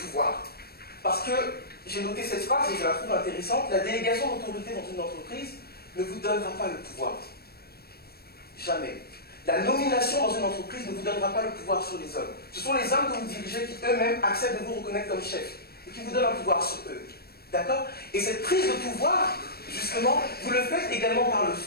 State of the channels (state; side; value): late; right; 0.46 ms